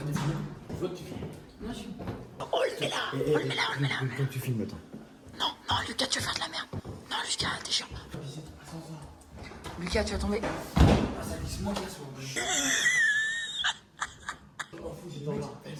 de filmer. Je veux que tu filmes. Oh, le mets là. Oh, le mets là, on le met là. Quand tu filmes, attends. Non, non, Lucas, tu vas faire de la merde. Non, Lucas, t'es chiant. Lucas, tu vas tomber.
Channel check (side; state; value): both; identical; correlation 1.00